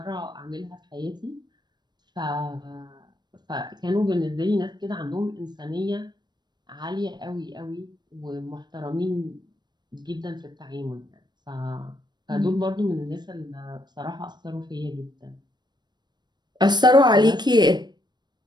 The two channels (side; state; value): left; late; 0.21 ms